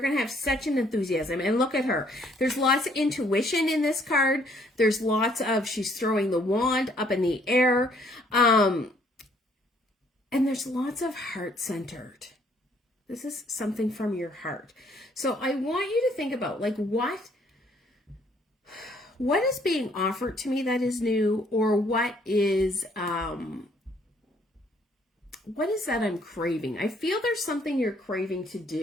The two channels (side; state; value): both; normal; correlation 0.64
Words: going to have such an enthusiasm. And look at her. There's lots of intuition in this card. There's lots of, she's throwing the wand up in the air. And there's lots of heart-centered. This is something from your heart. So I want you to think about, like, what is being offered to me that is new, or what is what is that I'm craving? I feel there's something you're craving to